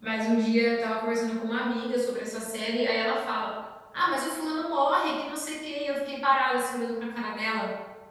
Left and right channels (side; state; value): both; identical; correlation 1.00